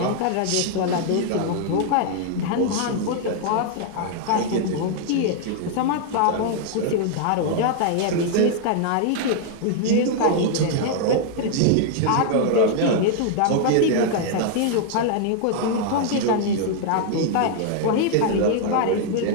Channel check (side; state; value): both; different; correlation 0.00